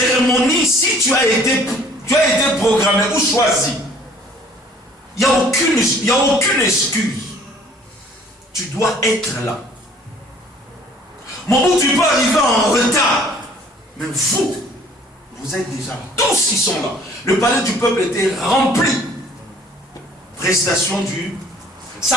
si tu as été programmé ou choisi, il n'y a aucune excuse. Tu dois être là. Mon bout, tu peux arriver en retard. Mais vous êtes déjà là. Tous qui sont là. Le palais du peuple était rempli. Prestation du...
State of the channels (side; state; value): both; normal; correlation 0.55